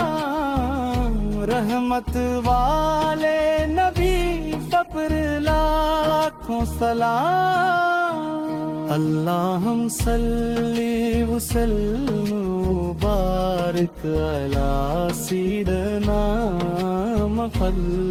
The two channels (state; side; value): identical; both; correlation 1.00